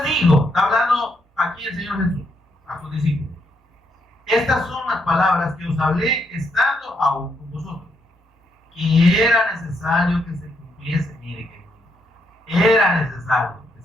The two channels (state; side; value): normal; both; correlation 0.77